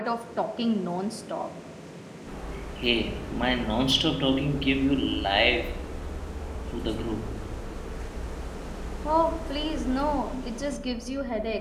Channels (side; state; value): both; identical; correlation 1.00